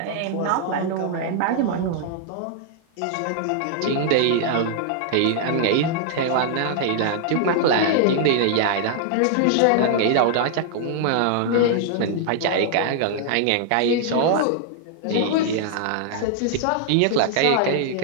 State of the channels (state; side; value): different; both; correlation -0.01